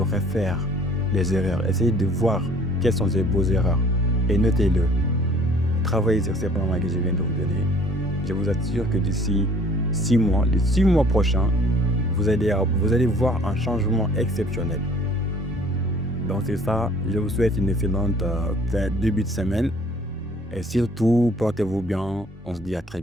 les erreurs. Essayez de voir quelles sont vos erreurs. Et notez-le. Travaillez sur ces plans que je viens de vous donner. Je vous assure que d'ici 6 mois, les 6 mois prochains, vous allez voir un changement exceptionnel. Donc c'est ça. Je vous souhaite une excellente début de semaine. Et surtout, portez-vous bien. On se dit à très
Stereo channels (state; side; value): normal; both; correlation 0.54